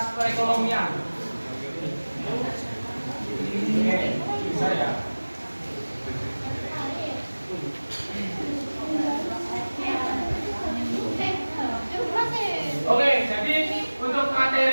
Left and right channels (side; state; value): both; inverted; correlation -1.00